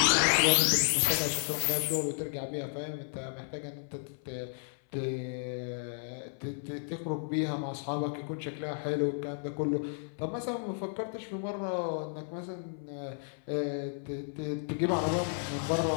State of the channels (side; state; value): right; silent; 56 dB below the other